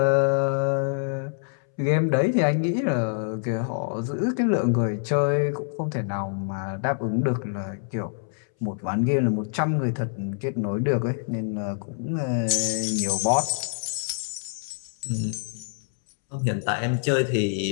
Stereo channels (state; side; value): silent; right; 61 dB below the other